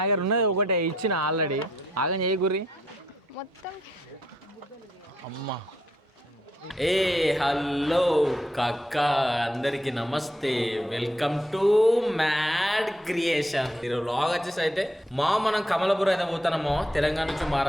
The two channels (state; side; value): normal; both; correlation 0.74